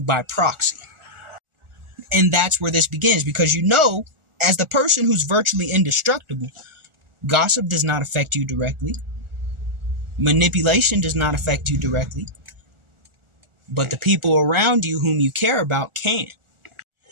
by proxy. And that's where this begins, because as the person who's virtually indestructible, gossip does not affect you directly. Manipulation does not affect you directly. But the people around you whom you care about can.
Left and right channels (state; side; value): late; left; 1.4 ms